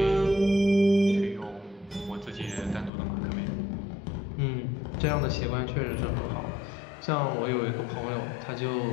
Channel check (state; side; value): drops out; right; at 2.9 s